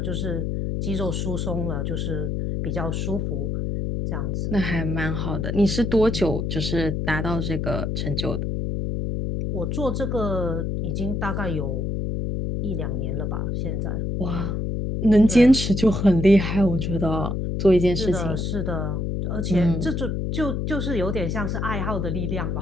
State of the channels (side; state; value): left; noise; hum, 1 dB below the sound